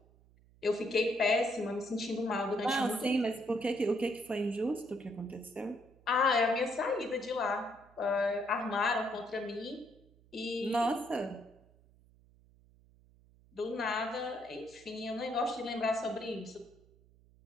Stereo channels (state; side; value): noise; right; hum, 28 dB below the sound